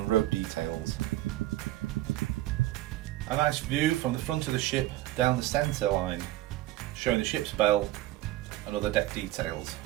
rope details. A nice view from the front of the ship down the centre line, showing the ship's bell and other deck details.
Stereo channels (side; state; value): left; quieter; 15.8 dB